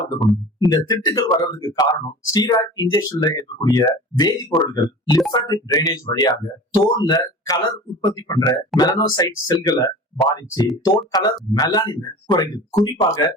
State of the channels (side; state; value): both; normal; correlation 0.38